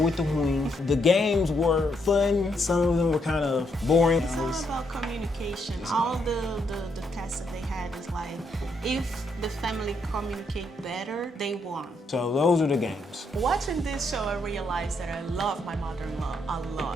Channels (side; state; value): both; normal; correlation 0.76